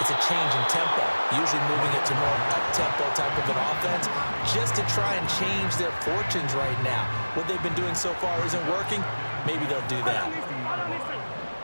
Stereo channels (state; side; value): inverted; both; correlation -1.00